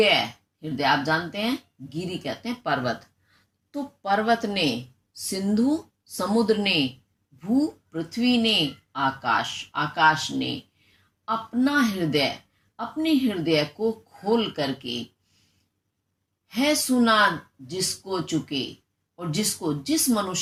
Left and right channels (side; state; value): both; identical; correlation 1.00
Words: हृदय आप जानते हैं, गिरि कहते हैं पर्वत। तो पर्वत ने, सिंधु समुद्र ने, भू पृथ्वी ने, आकाश आकाश ने अपना हृदय, अपने हृदय को खोल करके है सुना जिसको चुके, और जिसको, जिस